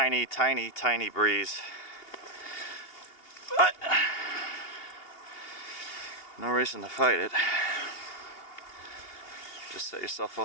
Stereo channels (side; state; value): right; late; 2.8 ms